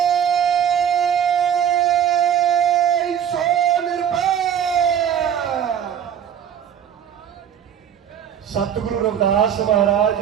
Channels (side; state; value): left; quieter; 8.9 dB